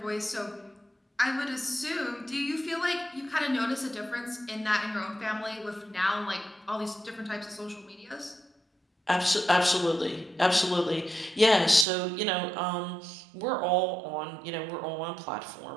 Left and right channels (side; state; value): left; drops out; at 11.9 s